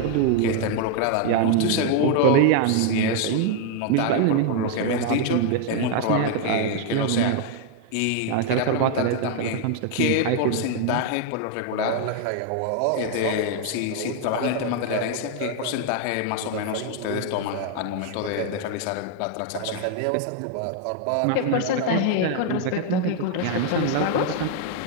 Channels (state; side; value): different; both; correlation 0.00